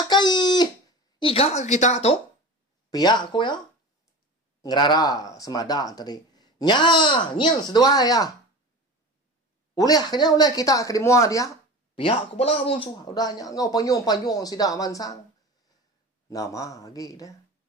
iga kita tu. Pihak ko ya. Ngerara semada tadi. Nyen sedua ya. Uleh kita ke dimua dia. Pihak ko bala musuh. Udahnya ngau panjung sidak mansang. Nama lagi dah.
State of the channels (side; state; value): both; normal; correlation 0.32